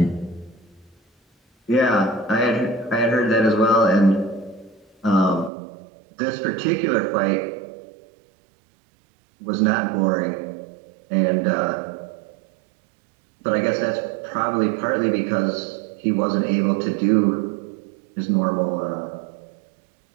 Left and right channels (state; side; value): drops out; left; at 5.5 s